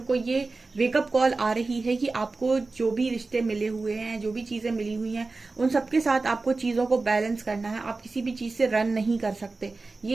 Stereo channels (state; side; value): quieter; left; 3.7 dB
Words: को ये वेकअप कॉल आ रही है कि आपको जो भी रिश्ते मिले हुए हैं, जो भी चीजें मिली हुई हैं, उन सबके साथ आपको चीजों को बैलेंस करना है। आप किसी भी चीज से रन नहीं कर सकते।